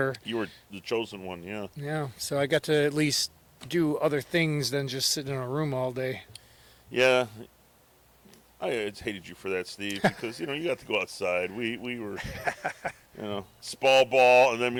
You were the chosen one, yeah. Yeah, so I got to at least do other things than just sit in a room all day. Yeah. I hated you for that, Steve, because, you got to go outside. We were, spall ball, and then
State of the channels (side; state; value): both; identical; correlation 1.00